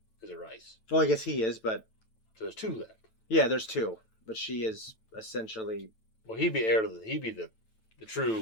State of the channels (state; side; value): late; right; 9.1 ms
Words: is a Rice, Well, I guess he is, but so there's two left. yeah, there's two. But she is essentially Well, he'd be heir to he'd be the